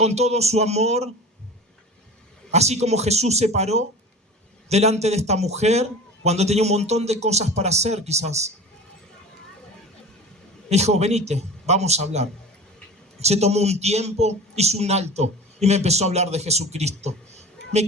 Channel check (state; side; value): normal; both; correlation 0.35